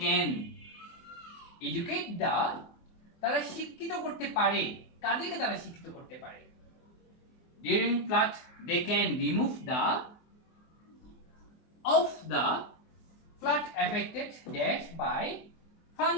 can educate the তারা শিক্ষিত করতে পারে। কাদেরকে তারা শিক্ষিত করতে পারে? During flood, they can remove the flood affected dash by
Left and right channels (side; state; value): right; late; 24 ms